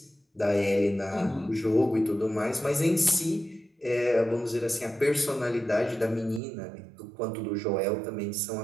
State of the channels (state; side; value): drops out; left; at 6.4 s